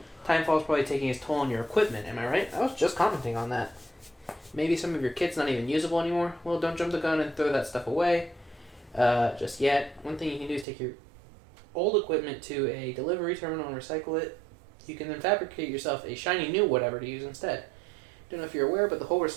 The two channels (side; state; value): left; drops out; at 10.7 s